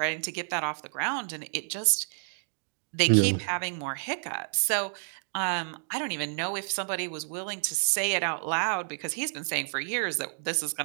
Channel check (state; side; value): silent; left; digital silence